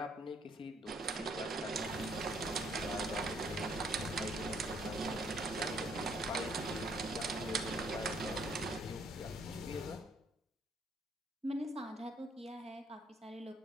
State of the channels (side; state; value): both; normal; correlation 0.66